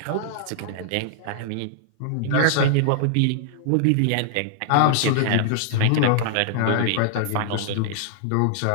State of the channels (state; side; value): different; both; correlation -0.01